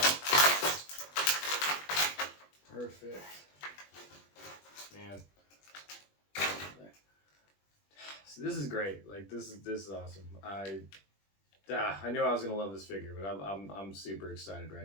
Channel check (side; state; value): right; late; 20 ms